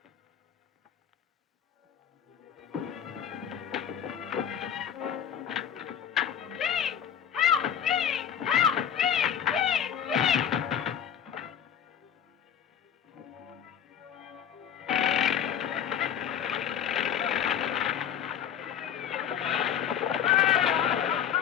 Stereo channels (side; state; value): right; quieter; 9.1 dB